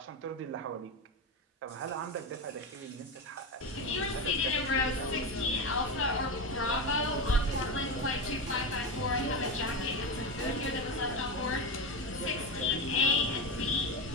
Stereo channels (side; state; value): both; normal; correlation 0.16